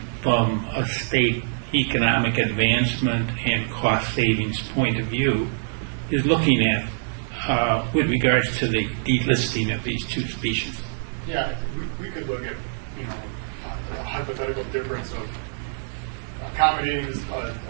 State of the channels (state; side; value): silent; left; 61 dB below the other